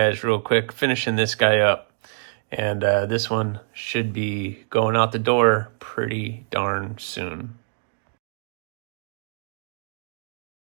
real quick, finishing this guy up. And this one should be going out the door pretty darn soon.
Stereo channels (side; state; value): left; silent; digital silence